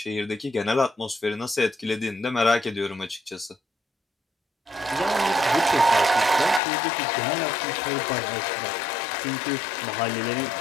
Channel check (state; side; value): drops out; right; at 6.6 s